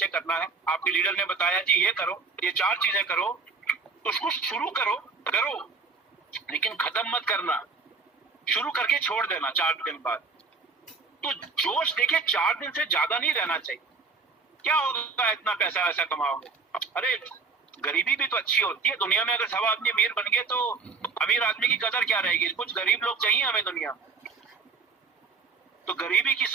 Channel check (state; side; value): quieter; left; 4.7 dB